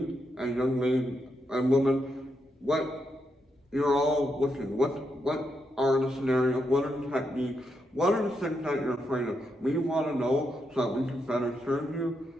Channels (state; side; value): normal; both; correlation 0.82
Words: and young ladies and women, what you're all looking, what are the scenarios, what are the techniques, what are the things that you're afraid of. We want to know so that we can better serve you.